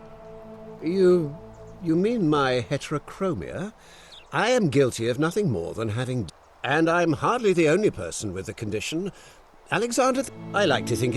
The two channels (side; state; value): both; identical; correlation 1.00